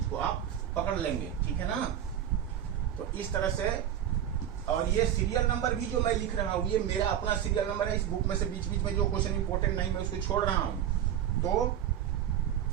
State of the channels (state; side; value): quieter; left; 10.3 dB